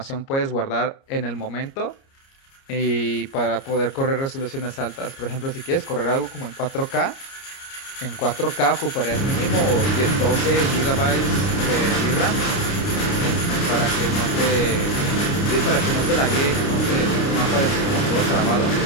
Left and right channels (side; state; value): right; late; 29 ms